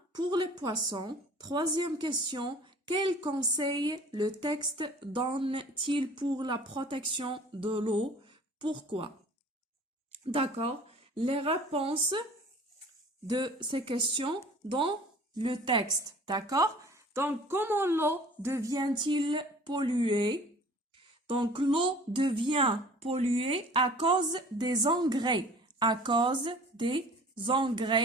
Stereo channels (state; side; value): normal; both; correlation 0.47